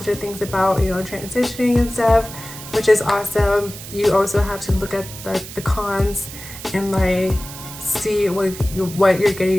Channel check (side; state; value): right; noise; hiss, 13 dB below the sound